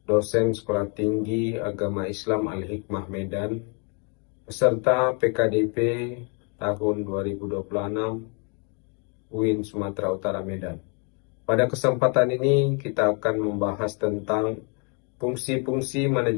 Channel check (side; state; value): right; quieter; 36.3 dB